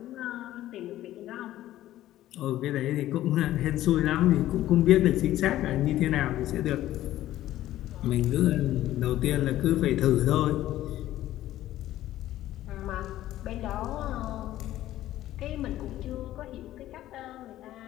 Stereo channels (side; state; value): right; quieter; 14.1 dB